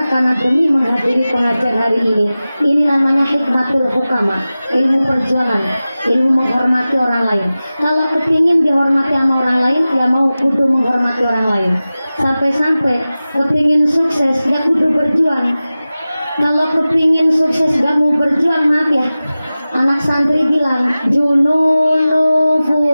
karena demi menghadiri pengajian hari ini. Ini namanya hikmatul hukama, ilmu perjuangan, ilmu menghormati orang lain. Kalau kepingin dihormati sama orang lain, ya mau kudu menghormati orang lain. Sampai-sampai kepingin sukses, ya kudu berjuang. Kalau kepingin sukses gak mau berjuang, maaf ya, anak santri bilang jununu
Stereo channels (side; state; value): both; inverted; correlation -0.96